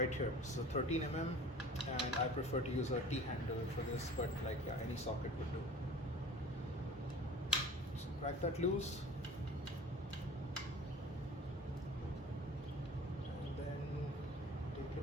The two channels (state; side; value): normal; both; correlation 0.43